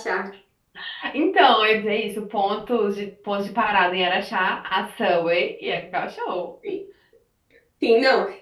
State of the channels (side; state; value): both; identical; correlation 1.00